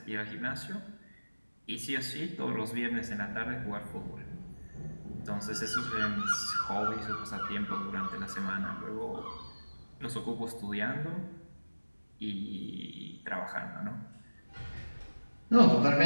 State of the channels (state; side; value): inverted; both; correlation -1.00